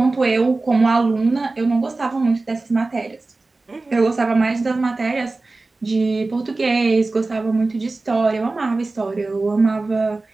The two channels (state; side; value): quieter; left; 3.4 dB